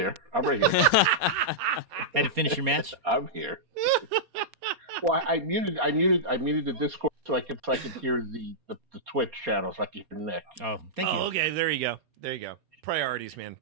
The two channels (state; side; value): late; left; 4.2 ms